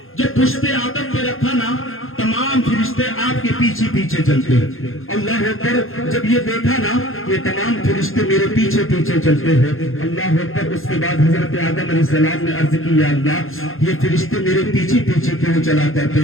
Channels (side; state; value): right; late; 0.60 ms